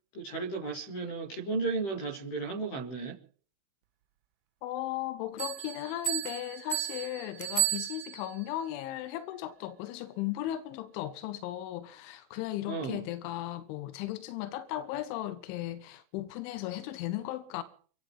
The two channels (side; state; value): right; late; 15 ms